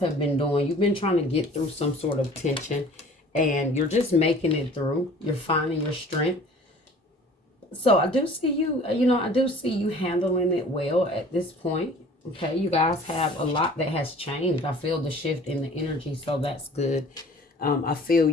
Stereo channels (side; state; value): both; normal; correlation 0.48